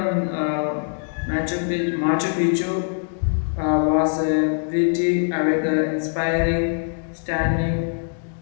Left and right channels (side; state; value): right; silent; digital silence